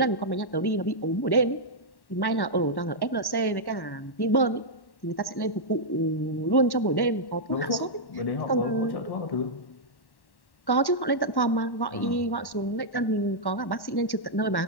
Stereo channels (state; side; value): late; right; 1.1 ms